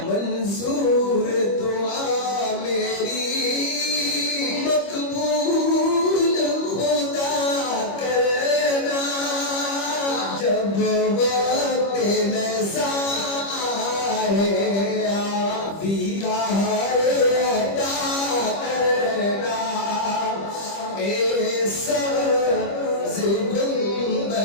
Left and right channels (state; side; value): late; right; 25 ms